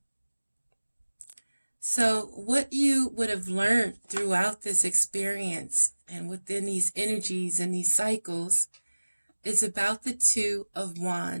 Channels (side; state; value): both; inverted; correlation -1.00